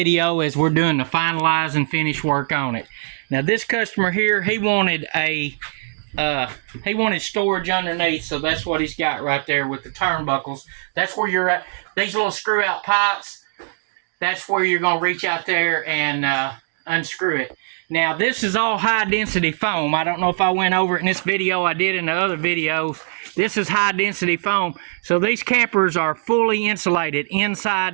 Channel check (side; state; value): left; silent; digital silence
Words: as we're doing the finalize and finish work on it. Now this customer here, he wanted storage underneath, so that's what he's got right there with the turnbuckles. That's where you're at. These little screw out pipes, that's where you're going to reach out there and unscrew it. Now this is all high density foam. I don't know if I went over it in this video. I did in the other videos. This is high density foam. So these campers are fully insulated